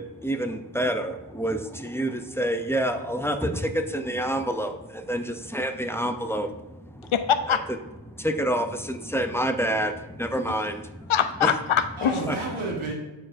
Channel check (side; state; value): both; normal; correlation 0.41